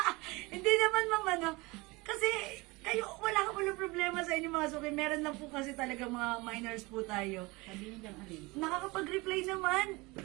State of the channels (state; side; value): quieter; left; 23.9 dB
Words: Hindi naman, ma'am, kasi kayo, wala ka walang problema sa inyo mga suki. Meron lang po kasi talaga mga minors po tayo. Nakakapag-reply naman.